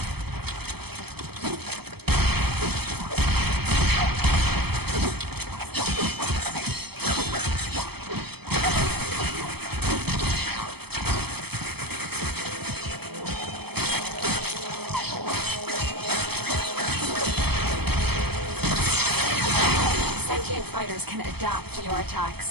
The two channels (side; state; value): left; late; 0.97 ms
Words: Fighters can adapt to your